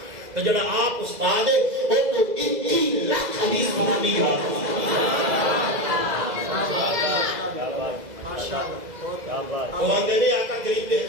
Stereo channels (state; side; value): late; left; 2.0 ms